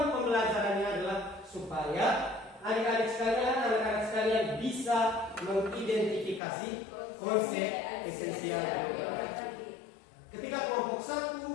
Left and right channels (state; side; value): drops out; right; at 6.4 s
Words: pembelajarannya adalah supaya adik-adik sekalian, anak-anak sekalian bisa mengidentifikasi konsep esensial geografi. Ketika kelompok 1,